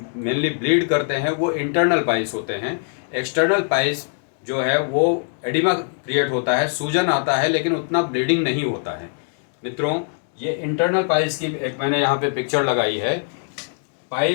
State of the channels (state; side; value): silent; right; digital silence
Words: ब्लीड करते हैं, वो इंटरनल पाइल्स होते हैं। एक्सटर्नल पाइल्स जो है वो एडिमा क्रिएट होता है, सूजन आता है, लेकिन उतना ब्लीडिंग नहीं होता है। मित्रों, ये इंटरनल पाइल्स की एक मैंने यहाँ पे पिक्चर लगाई है।